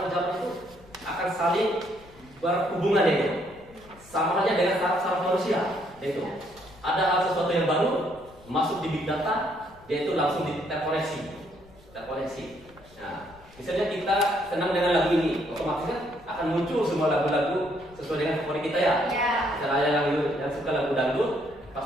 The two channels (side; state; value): left; noise; rumble, 24 dB below the sound